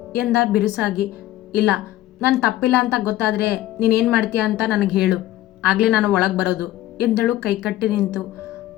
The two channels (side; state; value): right; quieter; 15.0 dB